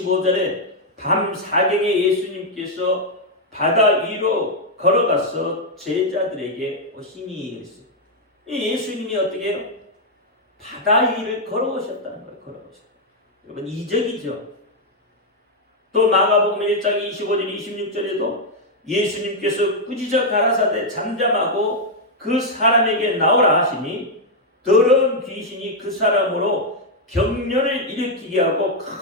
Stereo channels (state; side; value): normal; both; correlation -0.01